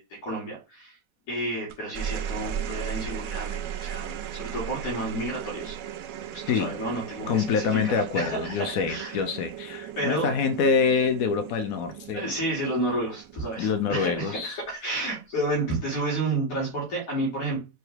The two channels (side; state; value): right; late; 4.2 ms